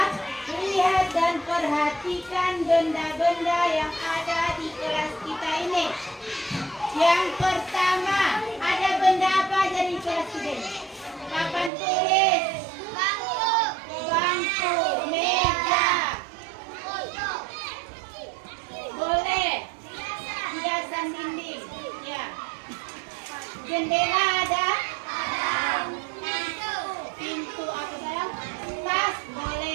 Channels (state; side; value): drops out; left; at 11.7 s